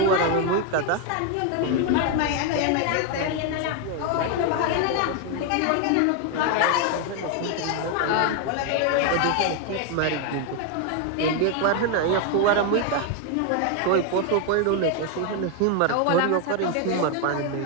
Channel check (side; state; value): both; different; correlation 0.01